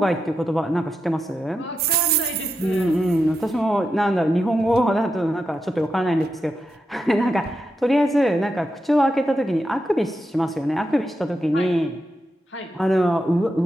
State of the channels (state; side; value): normal; both; correlation 0.87